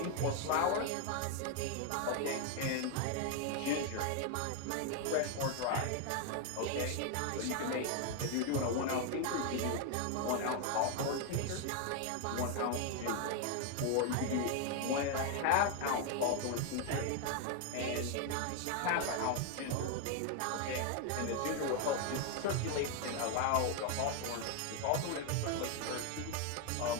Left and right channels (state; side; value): different; both; correlation 0.01